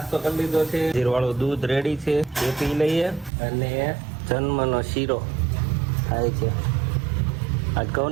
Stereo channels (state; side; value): drops out; left; at 3.3 s